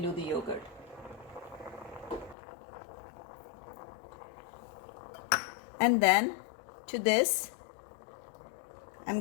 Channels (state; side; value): drops out; right; at 2.4 s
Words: the yogurt. And then to this, I'm